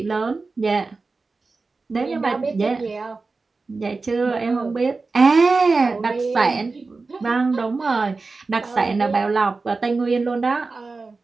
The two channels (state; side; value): quieter; left; 3.9 dB